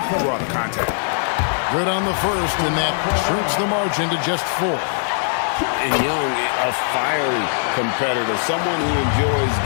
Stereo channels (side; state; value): right; silent; digital silence